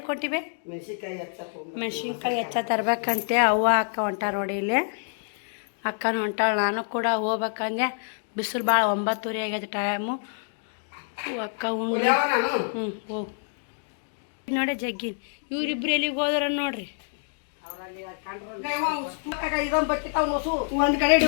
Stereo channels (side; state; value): right; silent; digital silence